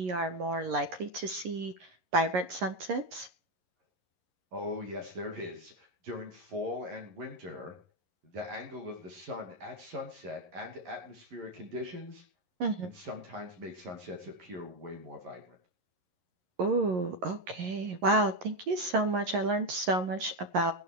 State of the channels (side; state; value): left; late; 11 ms